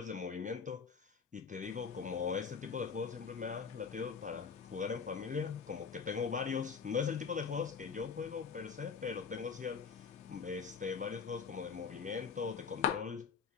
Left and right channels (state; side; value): quieter; right; 5.9 dB